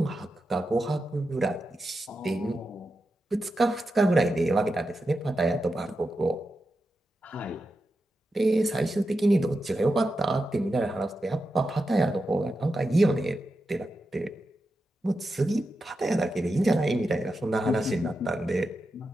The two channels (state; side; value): normal; both; correlation 0.89